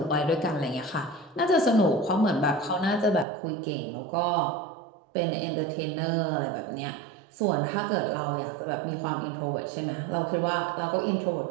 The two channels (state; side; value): drops out; left; at 3.2 s